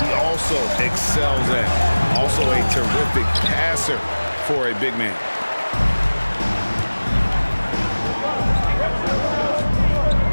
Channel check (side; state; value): both; inverted; correlation -1.00